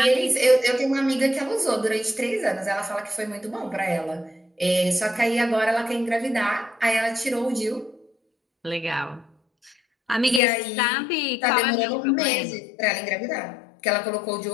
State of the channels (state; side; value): drops out; right; at 10.4 s